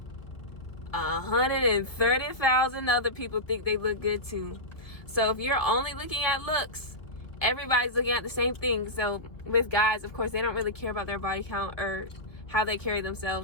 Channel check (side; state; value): right; late; 1.5 ms